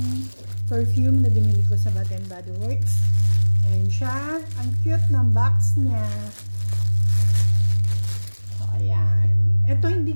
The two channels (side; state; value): both; inverted; correlation -1.00